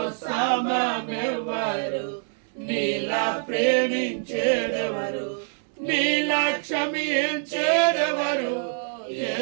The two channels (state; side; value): silent; left; digital silence